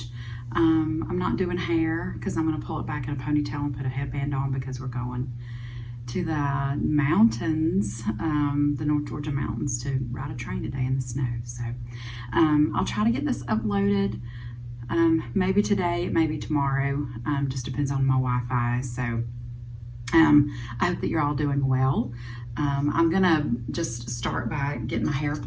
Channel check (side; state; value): both; identical; correlation 1.00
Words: I'm not doing hair because I'm going to pull it back in a ponytail and put a headband on because we're going to the mountains, the North Georgia mountains, to ride a train today in the snow. So I'll try to get this uploaded. Maybe today, maybe tomorrow, just depends on my Wi-Fi. So I hope that you're all doing well. I'm gonna just start by getting my hair